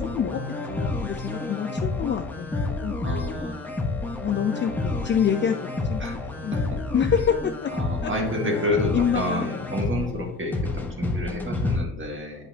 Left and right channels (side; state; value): right; quieter; 3.9 dB